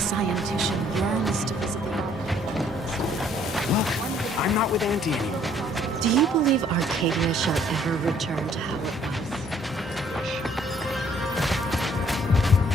yearns to visit the Look, I'm not with Auntie anymore. Do you believe Arcadia shall ever return to how it was?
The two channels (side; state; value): both; normal; correlation 0.62